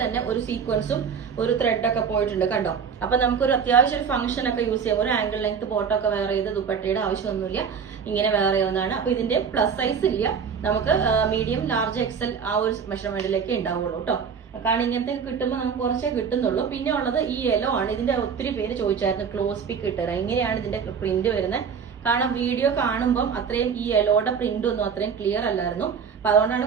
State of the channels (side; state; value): left; quieter; 6.5 dB